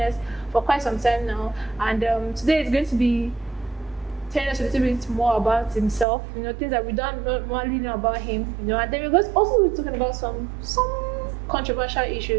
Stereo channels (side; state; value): left; drops out; at 6.1 s